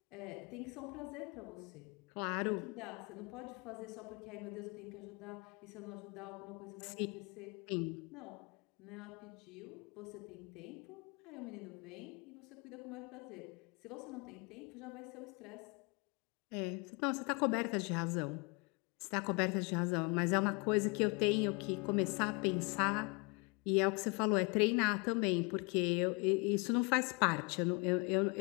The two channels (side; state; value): right; quieter; 31.3 dB